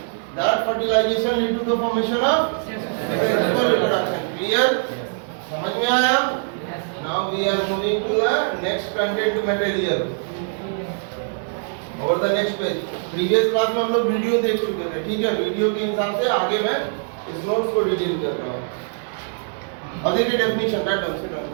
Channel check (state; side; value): silent; left; digital silence